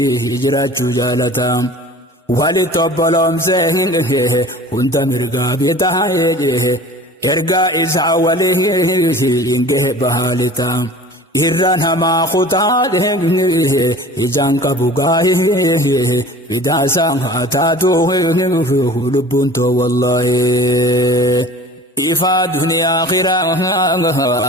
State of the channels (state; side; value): normal; both; correlation 0.42